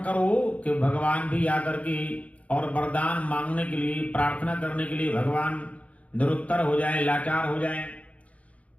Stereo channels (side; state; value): right; late; 0.066 ms